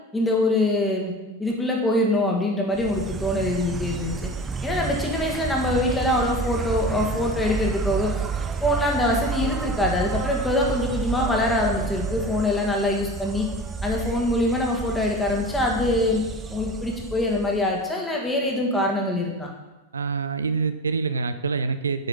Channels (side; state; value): both; normal; correlation 0.34